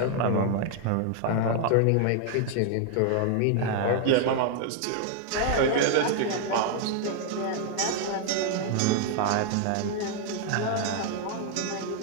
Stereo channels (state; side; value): different; both; correlation 0.00